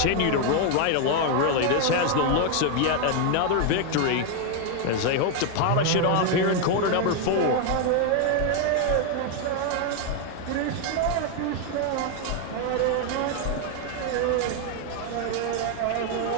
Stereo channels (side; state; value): both; different; correlation 0.01